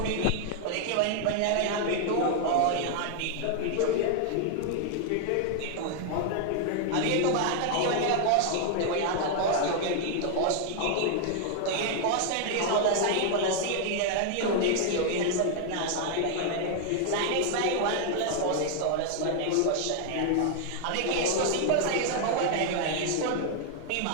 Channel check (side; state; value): both; different; correlation 0.00